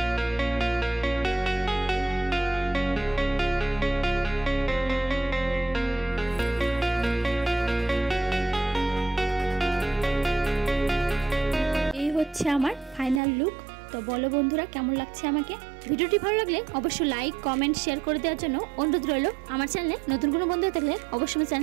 হচ্ছে আমার ফাইনাল লুক। তো বলো বন্ধুরা কেমন লাগছে আমাকে। ভিডিওটি ভালো লাগলে অবশ্যই লাইক কমেন্ট শেয়ার করে দেওয়ার জন্য অনুরোধ রইল। আমার চ্যানেলে নতুন কোনো বন্ধু থাকলে অবশ্যই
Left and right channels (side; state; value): left; drops out; at 13.2 s